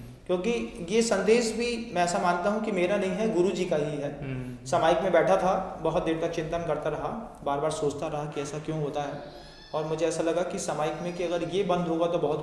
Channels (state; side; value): identical; both; correlation 1.00